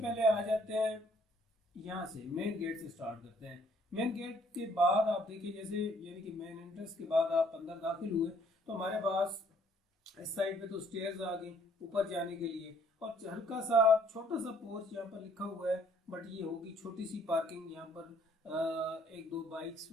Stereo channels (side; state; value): both; normal; correlation 0.63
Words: आ जाते हैं यहाँ से, मेन गेट से स्टार्ट करते हैं। मेन गेट के बाद आप देखिए, जैसे यानी कि मेन एंट्रेंस के बाद आप अंदर दाखिल हुए तो हमारे पास इस साइड पे तो स्टेयर्स आ गई ऊपर जाने के लिए। और हल्का सा छोटा सा पोर्च यहाँ पर लिखा हुआ है, बट ये होगी छोटी सी पार्किंग। यहाँ पर एक दो बाइक्स